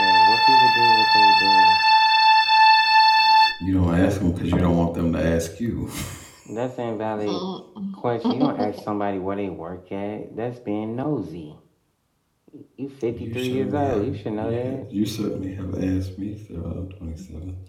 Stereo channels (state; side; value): identical; both; correlation 1.00